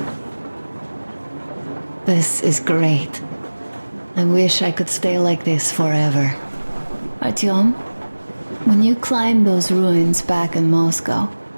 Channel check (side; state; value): both; inverted; correlation -1.00